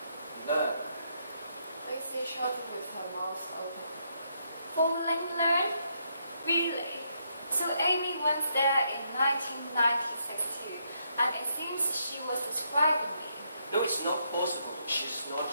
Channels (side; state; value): both; inverted; correlation -0.76